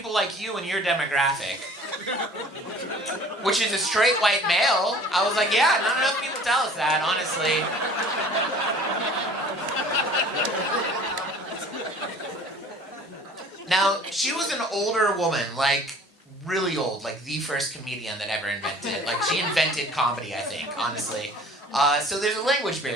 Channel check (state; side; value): normal; both; correlation 0.48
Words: like you and your demographic. Which is a straight white male. I was like, yeah, not enough people tell us that, honestly. Now, she was an older woman, like, really old, like the first comedian that ever invented. Like, she invented comedy, I think, honestly. So there's a language